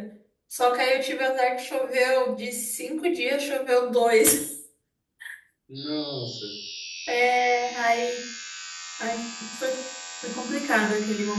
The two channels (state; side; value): identical; both; correlation 1.00